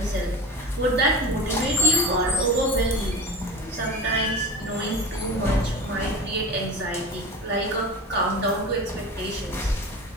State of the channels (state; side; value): normal; both; correlation 0.31